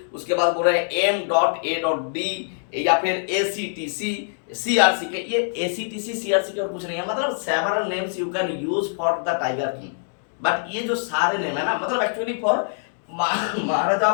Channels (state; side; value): silent; right; digital silence